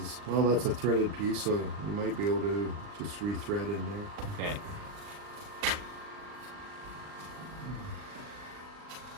well, that's a threaded piece, so you might be able to just rethread in there. Okay.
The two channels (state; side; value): late; left; 39 ms